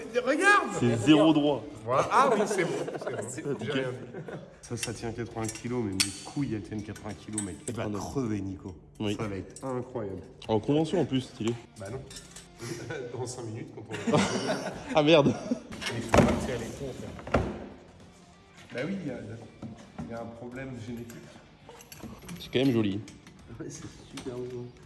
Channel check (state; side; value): identical; both; correlation 1.00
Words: Regarde. C'est zéro droit. Voilà. Ah oui, c'est bon. C'est bon. J'ai rien dit. Ça tient 80 kilos, mais mes couilles, elles tiennent 80 kilos, mec. Tu vas crever, Nico. Oui. Ça va être incroyable. En convention en plus, stylé. Bah non. Dans 5 minutes, quand on va... Ah merde. Il faut partir à l'écran, frère. Bah oui, il y a un problème génétique. C'est quand même joli. Ouais, c'est super beau.